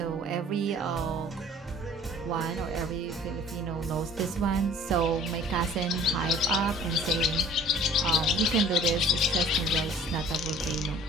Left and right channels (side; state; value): both; normal; correlation 0.50